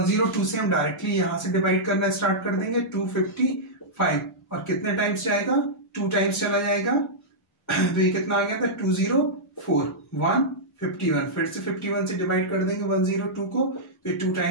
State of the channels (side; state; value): both; normal; correlation -0.10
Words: से हम डायरेक्टली यहां से डिवाइड करना स्टार्ट कर देंगे 255 और कितने टाइम्स जाएगा 2 टाइम्स चला जाएगा तो ये कितना आ गया था 204 151। फिर से 51 से डिवाइड कर देंगे 102 को तो 2